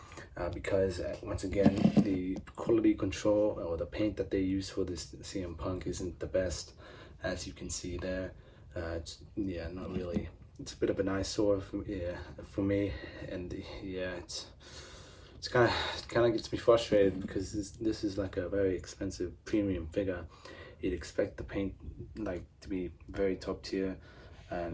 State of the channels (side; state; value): both; identical; correlation 1.00